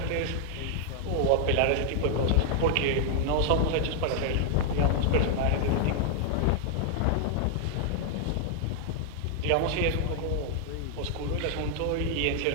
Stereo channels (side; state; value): both; different; correlation 0.00